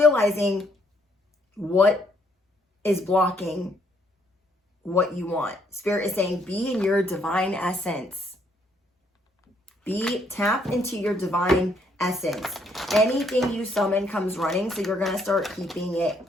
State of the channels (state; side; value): normal; both; correlation 0.70